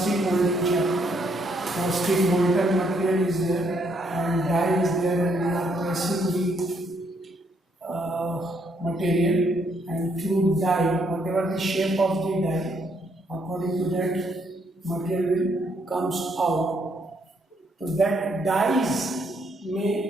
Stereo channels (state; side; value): normal; both; correlation 0.72